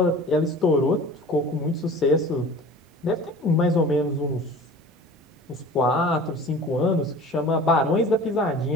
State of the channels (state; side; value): normal; both; correlation 0.42